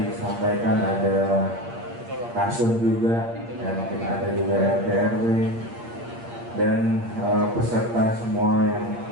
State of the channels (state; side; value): late; left; 8.6 ms